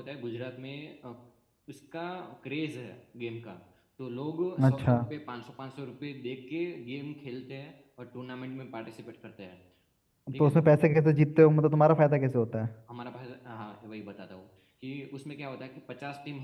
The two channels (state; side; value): identical; both; correlation 1.00